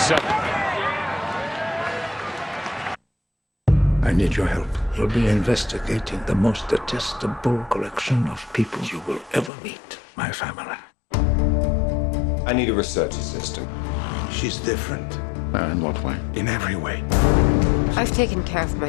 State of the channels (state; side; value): drops out; right; at 9.5 s